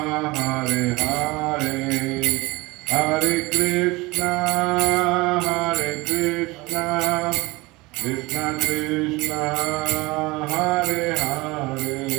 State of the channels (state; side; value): quieter; left; 22.7 dB